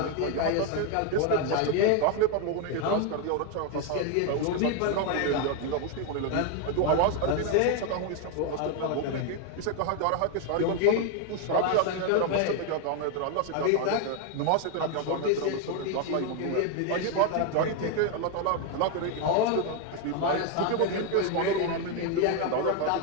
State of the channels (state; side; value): different; both; correlation 0.01